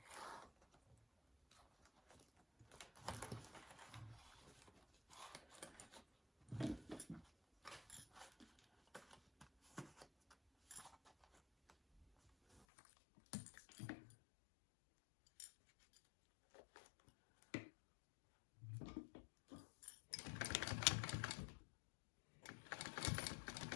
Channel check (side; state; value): right; drops out; at 12.7 s